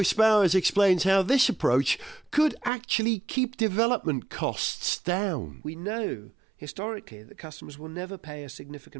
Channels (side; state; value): left; drops out; at 2.7 s